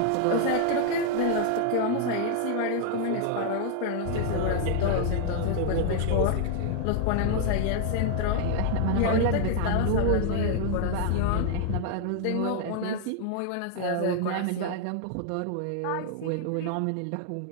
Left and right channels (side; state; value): both; different; correlation 0.00